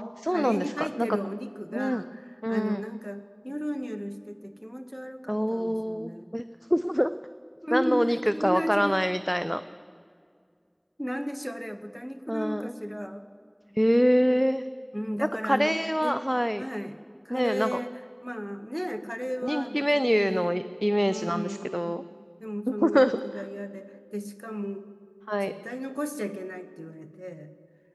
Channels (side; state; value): both; identical; correlation 1.00